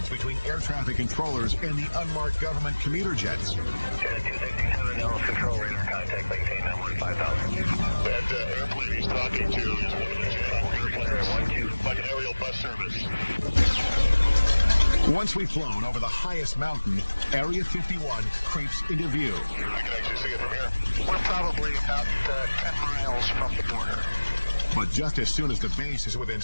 between air traffic controllers and the unmarked government commuter jets. Janet 267, Ellis control radar contact, maintain that 15,000. That airplane he's talking to is one of the Janet airplanes, like an aerial bus service. Once we've flown over the highest mountain, Area 51 creeps into view. I can actually see it from here. We're probably about 10 miles from the border. But just as soon as the base is within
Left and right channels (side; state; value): both; inverted; correlation -1.00